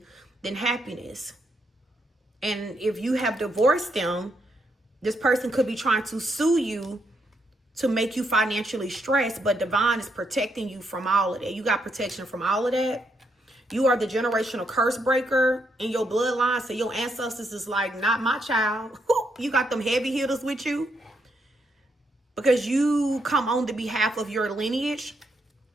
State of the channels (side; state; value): both; normal; correlation 0.78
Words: than happiness. And if you have divorced them, this person could be trying to sue you to make you financially stressed, but divine is protecting you from all of that. You got protection from all of that. You are the generational curse breaker in your bloodline. So your ancestors is like, not my child. You got them heavy hitters with you. Because you come on the behalf of your lineage.